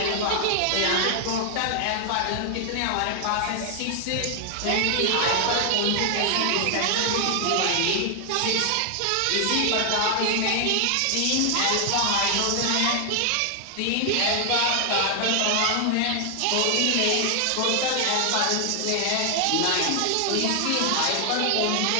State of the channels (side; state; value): both; different; correlation 0.00